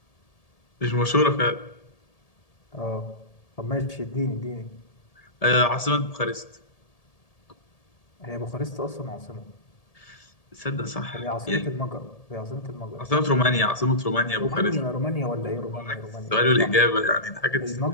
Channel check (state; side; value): late; right; 1.8 ms